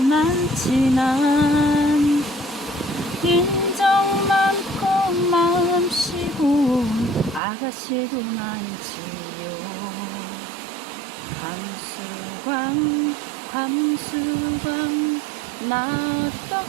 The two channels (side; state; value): left; drops out; at 7.4 s